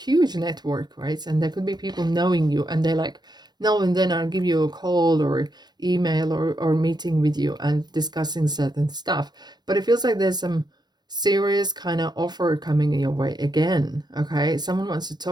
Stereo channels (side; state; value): left; late; 0.20 ms